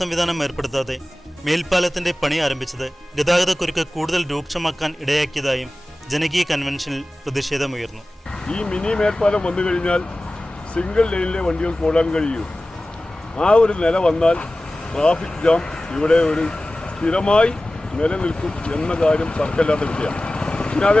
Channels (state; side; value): normal; both; correlation 0.96